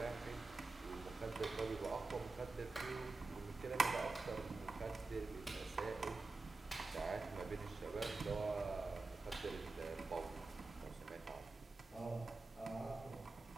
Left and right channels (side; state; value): left; quieter; 3.6 dB